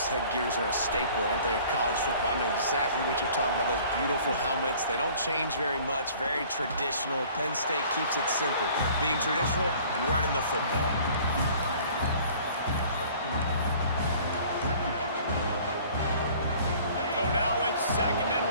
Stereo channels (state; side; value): inverted; both; correlation -0.51